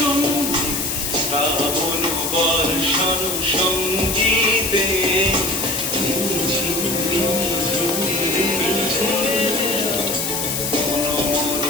শ্রাবণ বর্ষণ সঙ্গীতে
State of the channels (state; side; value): noise; left; hiss, 1 dB below the sound